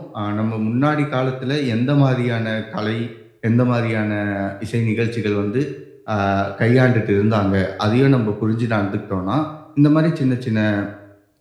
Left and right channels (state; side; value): identical; both; correlation 1.00